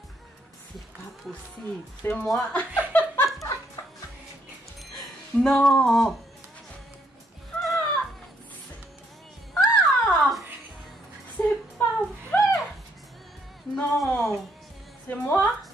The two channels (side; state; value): both; normal; correlation 0.72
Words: C'est pas possible. C'est moi. Non! C'est pas vrai! Non! C'est moi?